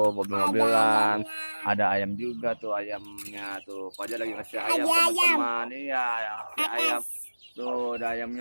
mobil-mobilan. Ada ayam juga tuh ayamnya tuh. Fajar lagi ngasih ayam teman-teman. Iya, ayam. Tuh ada ayamnya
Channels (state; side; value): inverted; both; correlation -1.00